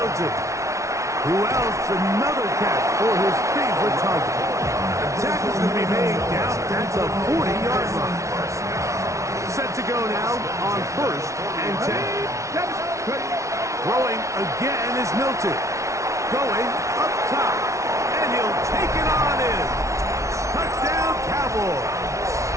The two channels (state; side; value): late; left; 0.14 ms